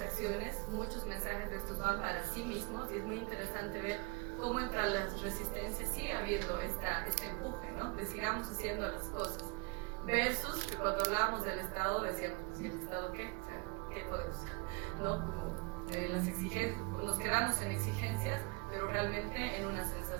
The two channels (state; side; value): quieter; left; 29.8 dB